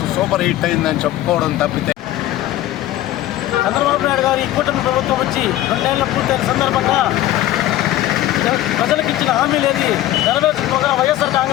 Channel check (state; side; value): quieter; right; 14.3 dB